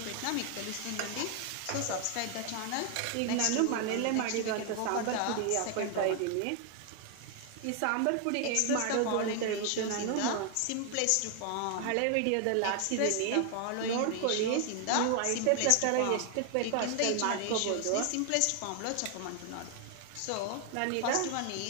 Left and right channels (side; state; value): both; different; correlation 0.00